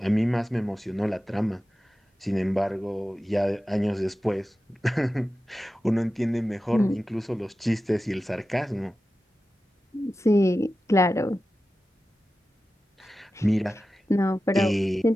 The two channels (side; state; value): both; normal; correlation 0.94